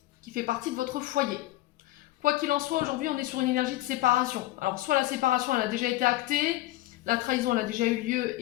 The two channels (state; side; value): quieter; right; 17.2 dB